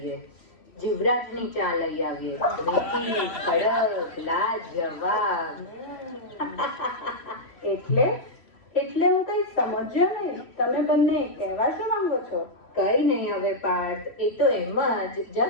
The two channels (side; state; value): right; late; 3.1 ms